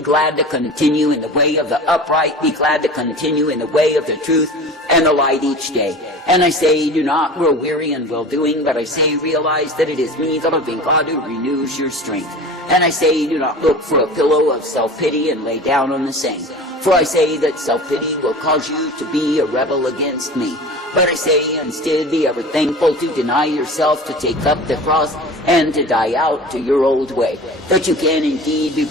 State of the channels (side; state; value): both; normal; correlation 0.37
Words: glad to continue in the way of the upright, be glad to continue in the way of the truth and the light each day. And I say, do not grow weary in well-doing, but I say, realize that it is me, the living God, who renews your strength. And I say, do not look for a pillow of self-pity and lay down on the same. For I say that self-pity will cause you to be a rebel against me. But I say, instead, be ever thankful to deny yourself, to take up the cross, and to die out to your old way, that you can indeed be